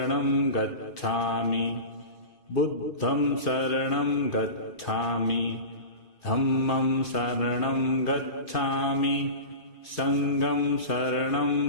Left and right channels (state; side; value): late; right; 2.5 ms